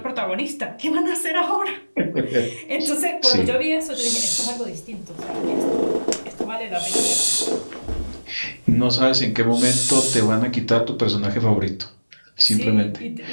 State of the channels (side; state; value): both; inverted; correlation -1.00